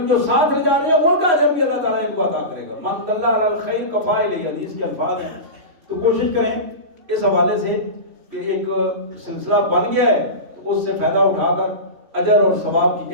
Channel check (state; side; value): late; left; 3.1 ms